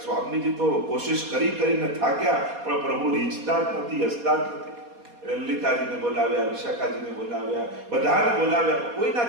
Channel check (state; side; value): late; left; 4.2 ms